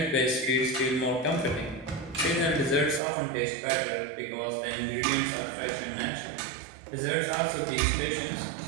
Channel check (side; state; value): left; drops out; at 3.0 s